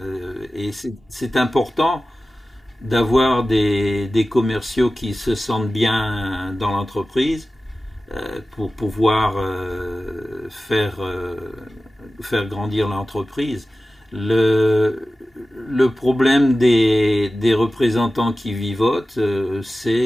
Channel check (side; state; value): both; normal; correlation 0.95